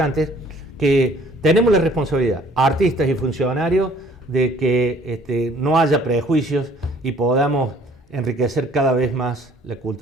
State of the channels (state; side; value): normal; both; correlation 0.56